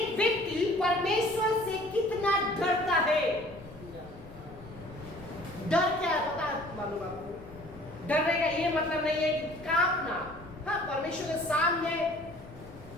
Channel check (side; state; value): left; noise; rumble, 19 dB below the sound